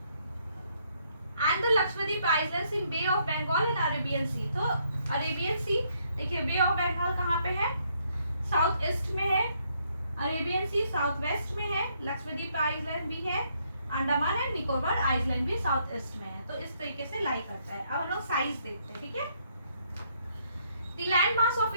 And the Lakshadweep islands in bay of Bengal and Arabian sea. तो अरेबियन सी देखिए, बे ऑफ बंगाल कहाँ पे है? साउथ ईस्ट में है। अरेबियन सी साउथ वेस्ट में है। लक्षद्वीप आइलैंड भी है। अंडमान एंड निकोबार आइलैंड भी साउथ ईस्ट में है। तो इस तरीके से लाई करता है। अब हम लोग साइज देखते हैं, ठीक है। The land mass of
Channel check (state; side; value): inverted; both; correlation -0.72